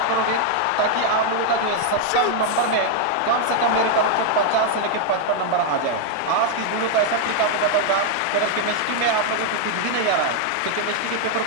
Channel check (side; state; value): both; different; correlation 0.00